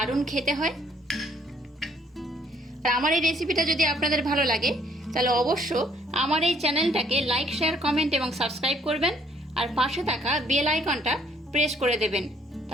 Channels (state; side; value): normal; both; correlation 0.64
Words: খেতে হয়। আর আমার এই রেসিপিটা যদি আপনাদের ভালো লাগে তাহলে অবশ্য আমার এই চ্যানেলটাকে লাইক, শেয়ার, কমেন্ট এবং সাবস্ক্রাইব করবেন। আর পাশে থাকা বেল আইকনটা প্রেস করে দেবেন।